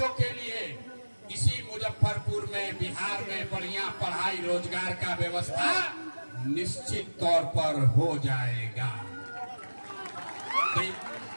के लिए इसी मुजफ्फरपुर में, बिहार में बढ़िया पढ़ाई रोजगार का व्यवस्था निश्चित तौर पर हो जाएगा।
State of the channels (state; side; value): inverted; both; correlation -1.00